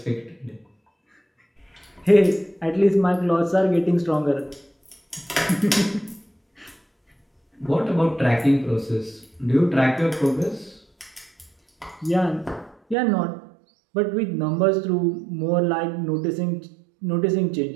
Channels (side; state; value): left; drops out; at 13.0 s